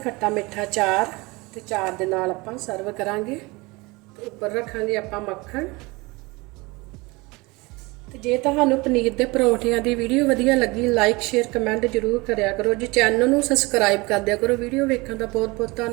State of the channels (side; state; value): left; quieter; 24.2 dB